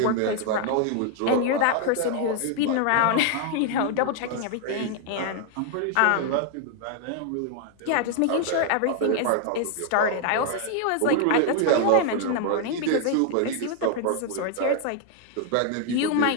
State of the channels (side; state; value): both; different; correlation 0.00